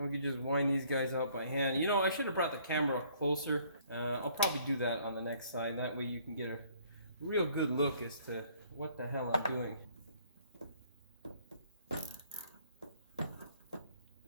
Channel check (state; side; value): inverted; both; correlation -0.61